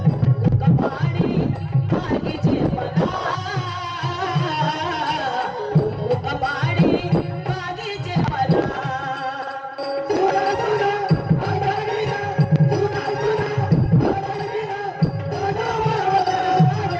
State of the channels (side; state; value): both; identical; correlation 1.00